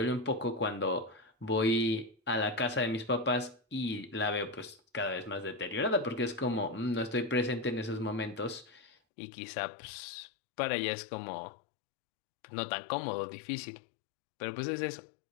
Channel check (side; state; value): right; drops out; at 8.9 s